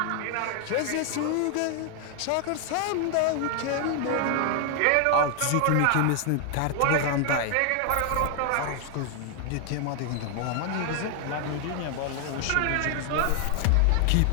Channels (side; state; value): both; different; correlation 0.00